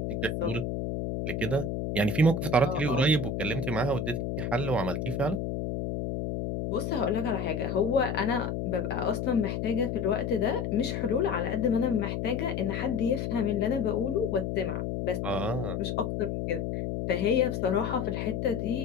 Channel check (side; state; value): left; noise; hum, 2 dB below the sound